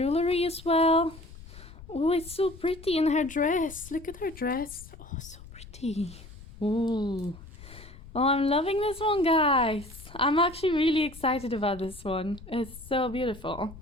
as well. Oh, it's so pretty in her dress. Look at her dress. Oh, so pretty. Ooh. Oh, I'm loving this one, guys. I'm actually really excited about this one. It's so beautiful.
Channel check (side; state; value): left; noise; rumble, 17 dB below the sound